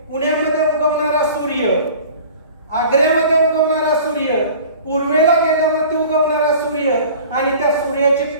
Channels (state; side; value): inverted; both; correlation -0.43